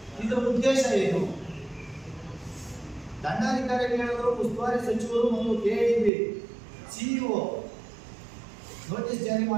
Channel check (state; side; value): drops out; left; at 6.1 s